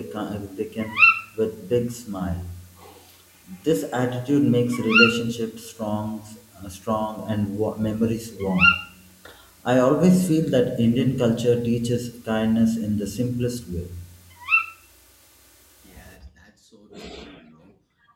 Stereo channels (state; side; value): identical; both; correlation 1.00